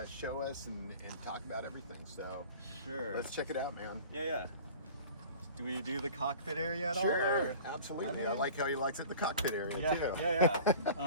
show us and talk about everything. So sure, let's check it out, man. Yeah. Do we do the cockpit area at all? Sure, absolutely. I like how he likes it, the cockpit area too.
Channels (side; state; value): both; inverted; correlation -0.42